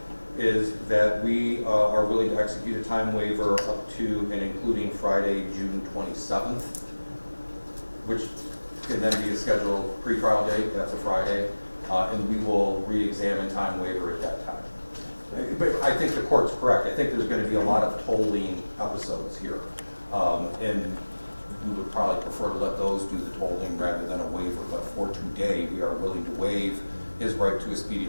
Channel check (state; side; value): inverted; both; correlation -1.00